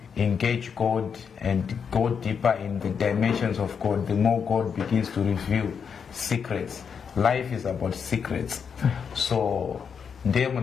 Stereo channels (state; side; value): quieter; right; 6.7 dB